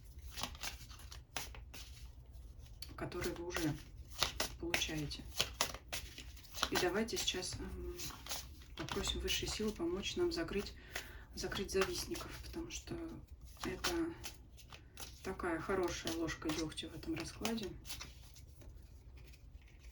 которые вы уже получаете. И давайте сейчас попросим высшие силы помочь нам закрыть завистников, потому что это такая хорошая ложка дегтя в этом раскладе.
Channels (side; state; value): both; identical; correlation 1.00